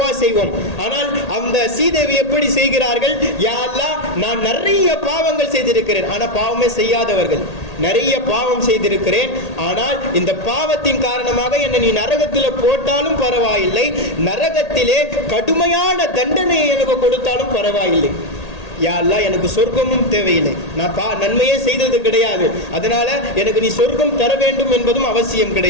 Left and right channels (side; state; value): right; late; 1.8 ms